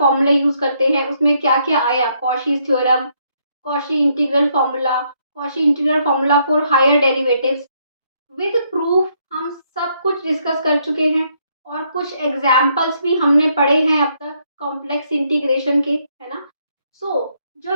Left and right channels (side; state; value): both; inverted; correlation -0.72